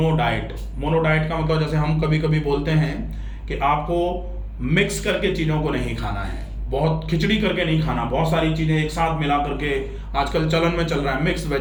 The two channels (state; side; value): identical; both; correlation 1.00